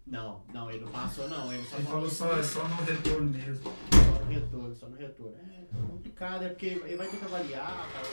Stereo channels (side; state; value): both; inverted; correlation -1.00